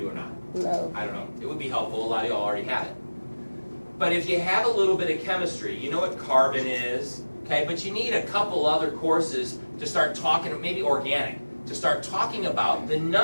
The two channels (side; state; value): both; inverted; correlation -1.00